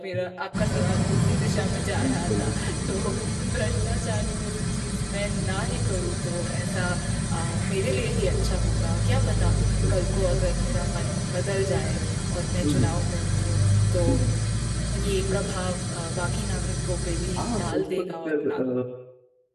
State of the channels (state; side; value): identical; both; correlation 1.00